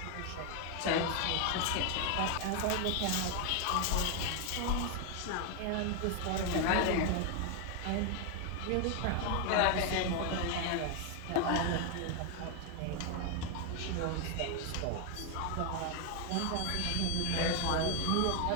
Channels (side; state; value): both; different; correlation 0.01